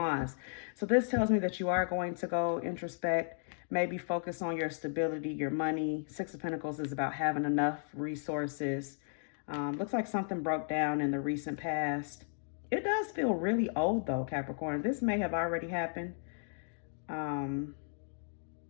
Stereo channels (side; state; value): right; silent; digital silence